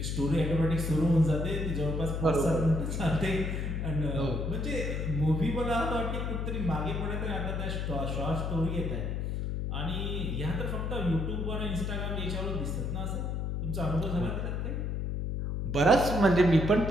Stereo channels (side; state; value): left; noise; hum, 1 dB below the sound